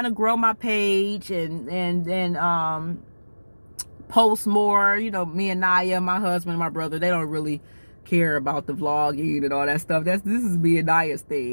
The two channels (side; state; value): both; inverted; correlation -1.00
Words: to grow my page and post more. You know, me and Naya, my husband, my brother, they don't really care about the vlogging and all that stuff. This is me and Naya's